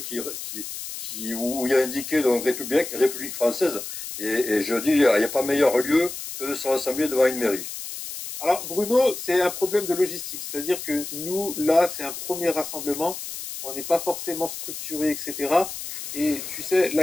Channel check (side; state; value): left; noise; hiss, 8 dB below the sound